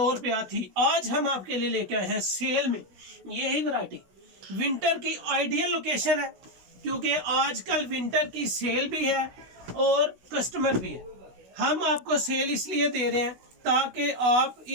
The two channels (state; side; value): late; left; 16 ms